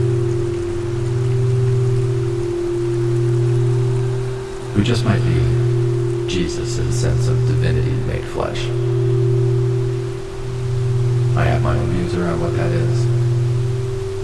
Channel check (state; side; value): identical; both; correlation 1.00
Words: Who just might be Jesus' sense of divinity made flesh. I have my own views around what that is.